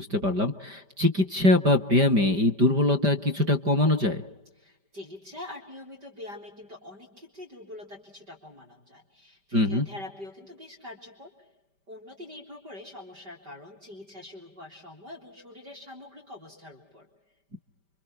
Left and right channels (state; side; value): late; left; 5.1 ms